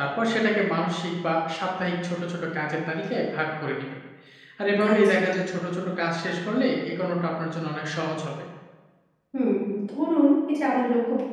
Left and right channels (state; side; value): identical; both; correlation 1.00